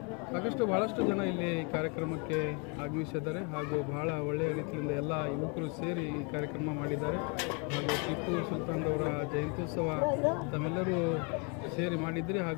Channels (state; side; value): quieter; right; 33.4 dB